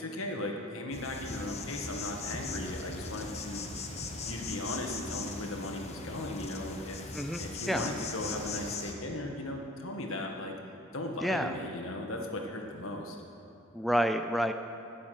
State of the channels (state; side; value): normal; both; correlation 0.51